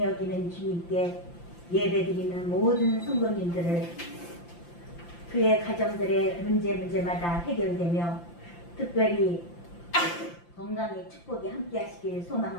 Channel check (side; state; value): right; late; 5.8 ms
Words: 여기는 주님께 예배드리는 모든 성도님들을 그의 가정들의 문제마다 해결되며 특별히 건강의 축복이 함께하시길